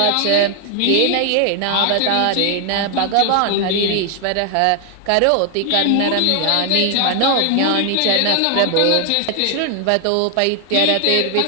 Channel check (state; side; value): different; both; correlation 0.00